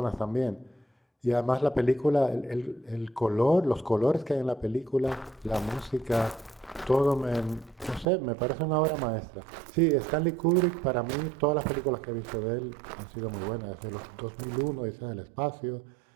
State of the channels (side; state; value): left; drops out; at 8.1 s